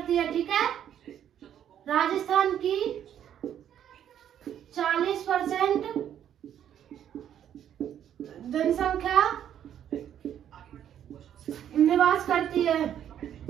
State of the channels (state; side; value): quieter; left; 10.0 dB